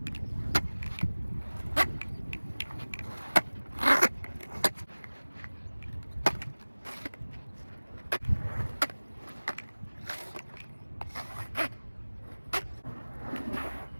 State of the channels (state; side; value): inverted; both; correlation -1.00